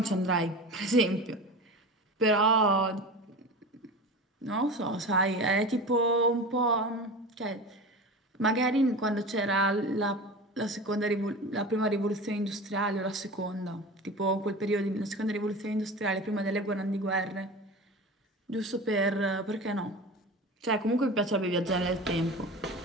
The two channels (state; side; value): normal; both; correlation 0.32